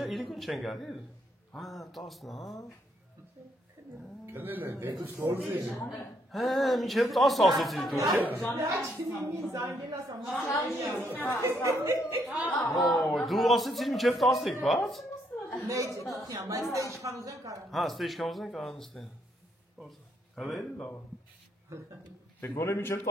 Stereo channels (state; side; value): normal; both; correlation 0.73